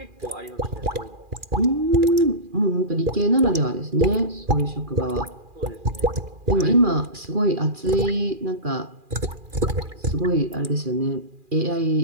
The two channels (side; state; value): left; late; 2.4 ms